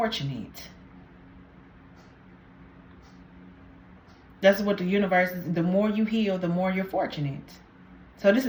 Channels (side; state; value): both; identical; correlation 1.00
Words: That's what the universe is. The more you heal, the more you're fortunate. So this